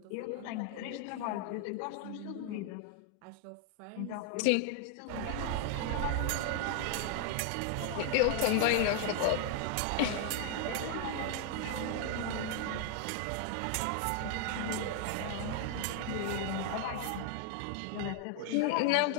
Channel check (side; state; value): both; different; correlation 0.00